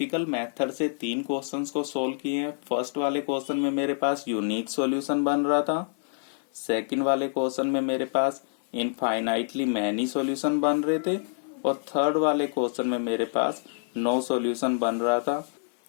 मेथड से 3 क्वेश्चंस को सोल्व किए हैं। फर्स्ट वाले क्वेश्चन में मेरे पास यूनिक सॉल्यूशन बन रहा था, सेकंड वाले क्वेश्चन में मेरे पास इनफाइनाइटली मैनी सॉल्यूशन बन रहे थे, और थर्ड वाले क्वेश्चन में मेरे पास नो सॉल्यूशन बन रहा था।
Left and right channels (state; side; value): silent; right; 59 dB below the other